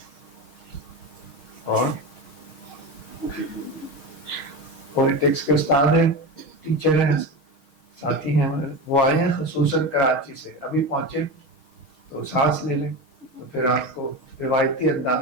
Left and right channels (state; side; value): late; right; 6.4 ms